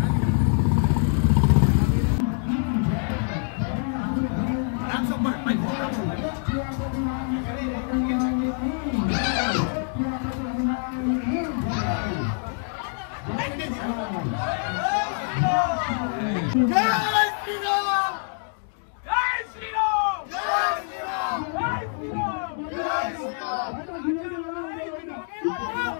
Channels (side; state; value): right; silent; 55 dB below the other